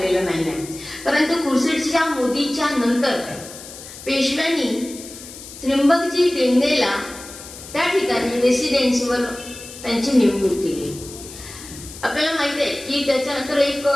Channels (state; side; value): noise; left; hiss, 15 dB below the sound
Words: नाही. परंतु खुर्शीदजी मोदीच्या नंतर पेशव्यांनी त्र्यंबकजी डेंगेला त्या ठिकाणी रेसिडेन्सीवर त्यांची नेमणूक केली. आपल्याला माहिती आहे की त्याच्यानंतर एक